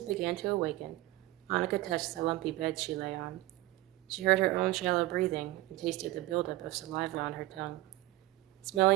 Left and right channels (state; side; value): quieter; left; 18.1 dB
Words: began to awaken, Annika touched the lumpy bed she lay on. She heard her own shallow breathing and tasted the buildup of saliva on her tongue.